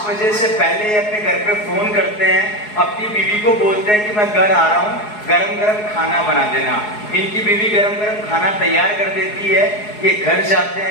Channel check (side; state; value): right; late; 4.8 ms